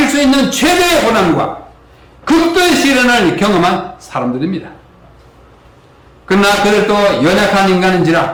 수 있는 최대의 고난과 극도의 시련을 경험한 사람들입니다. 그러나 그들도 연약한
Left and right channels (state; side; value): identical; both; correlation 1.00